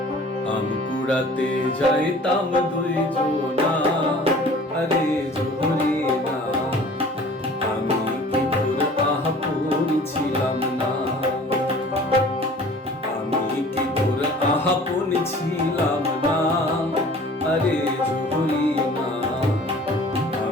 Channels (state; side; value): normal; both; correlation 0.47